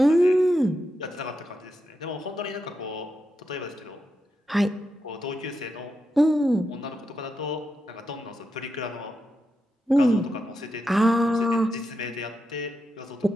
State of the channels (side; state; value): both; normal; correlation 0.86